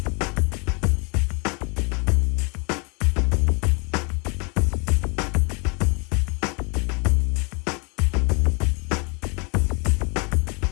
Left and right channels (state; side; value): quieter; right; 32.6 dB